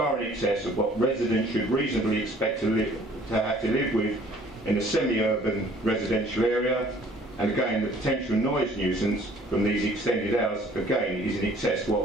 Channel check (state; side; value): normal; both; correlation 0.56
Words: in excess of what residents should reasonably expect to have to live with in a semi-urban residential area, and again the potential noise nuisance from these extended hours again is in excess of